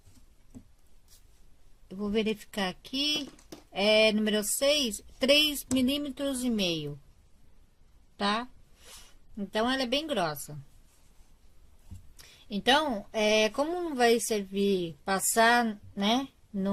Eu vou verificar aqui. É número 6, 3 milímetros e meio, tá? Então, ela é bem grossa. Então, como não vai servir passar, né,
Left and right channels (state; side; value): identical; both; correlation 1.00